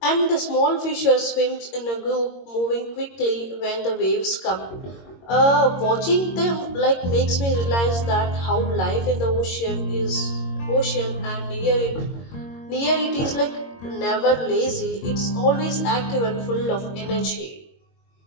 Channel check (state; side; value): late; right; 22 ms